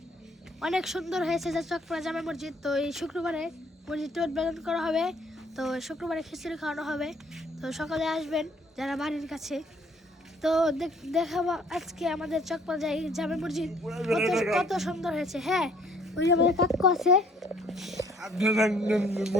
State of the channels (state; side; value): normal; both; correlation 0.60